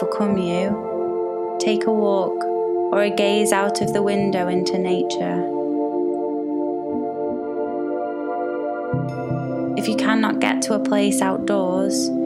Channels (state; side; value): identical; both; correlation 1.00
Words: you, take a walk or a gaze out of the window into nature. If you cannot get to a place outdoors,